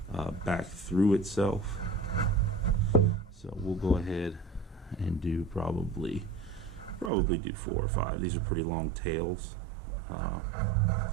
back through itself. So we'll go ahead and do probably do 4 or 5. These are pretty long tails.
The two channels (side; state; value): left; drops out; at 7.1 s